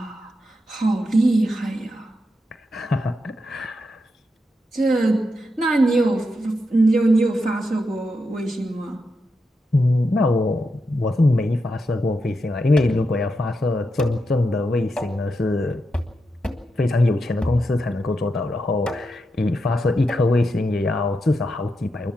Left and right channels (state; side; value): normal; both; correlation 0.85